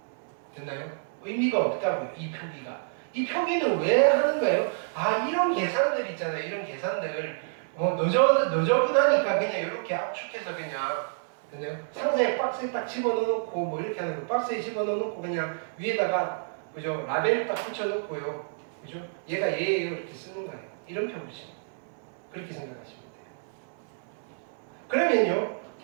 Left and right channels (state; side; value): silent; left; 59 dB below the other